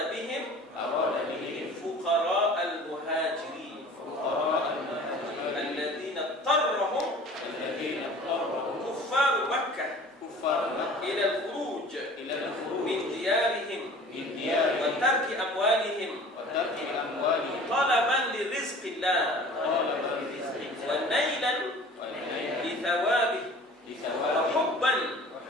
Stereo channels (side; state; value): both; normal; correlation 0.45